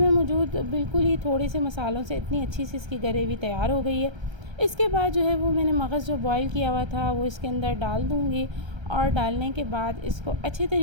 मौजूद बिल्कुल ही थोड़े से मसालों से इतनी अच्छी सी इसकी ग्रेवी तैयार हो गई है। इसके बाद जो है वो मैंने मगज़ जो बॉईल किया हुआ था वो इसके अंदर डाल दूँगी और डालने के बाद इसको अच्छे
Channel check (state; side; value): late; left; 1.3 ms